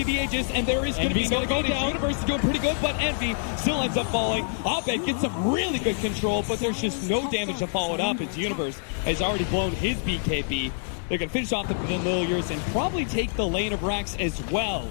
be the Aegis, and there is going to be no go down. Universe is doing pretty good, but Envy still ends up falling. Abed gets some really good control, but there's just no damage to follow it up. As Universe has already blown his BKB. They're going to finish off the Familiars and probably take the lane of Rax as well.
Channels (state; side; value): silent; right; digital silence